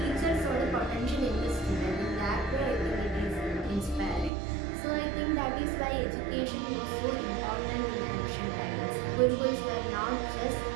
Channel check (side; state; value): left; drops out; at 4.3 s